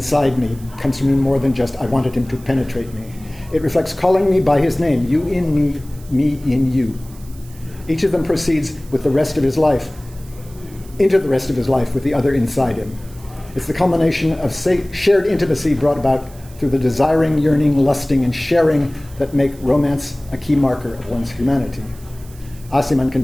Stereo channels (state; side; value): noise; right; hiss, 23 dB below the sound